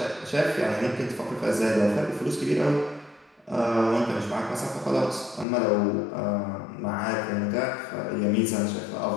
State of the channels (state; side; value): drops out; right; at 5.5 s